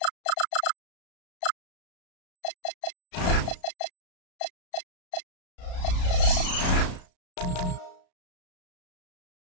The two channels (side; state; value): right; late; 33 ms